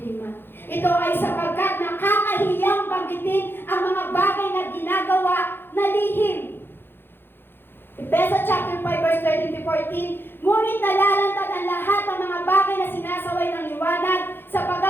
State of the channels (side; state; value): right; late; 0.10 ms